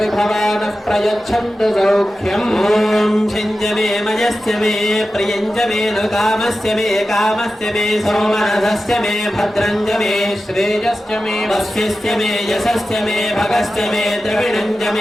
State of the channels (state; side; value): normal; both; correlation 0.93